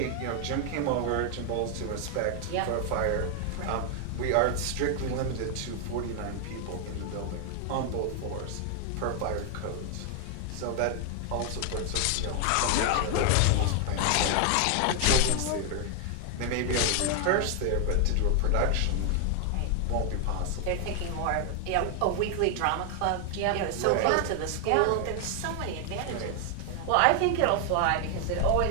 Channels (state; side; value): different; both; correlation 0.00